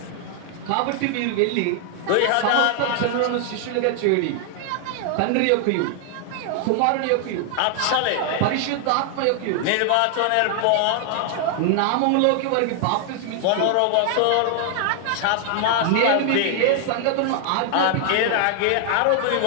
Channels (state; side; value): different; both; correlation 0.00